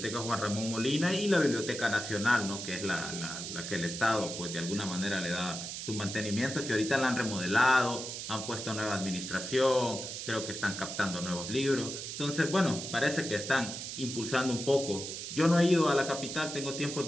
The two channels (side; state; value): right; noise; hiss, 7 dB below the sound